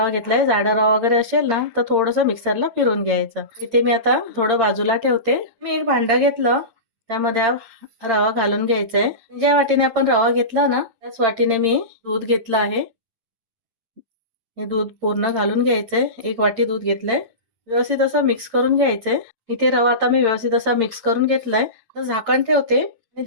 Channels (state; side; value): late; left; 8.8 ms